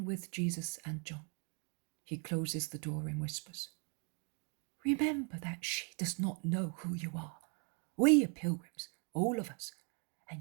with Jesus and John. He closes the door and whispers, Remember that she does not know who you are. We are pilgrims, all of us,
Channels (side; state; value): left; quieter; 37.9 dB